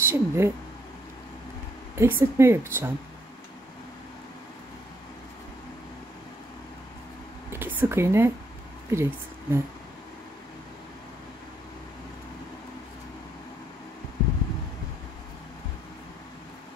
eksiltme yapacağım. 2 sık iğne, bir eksiltme.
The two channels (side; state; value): both; normal; correlation 0.71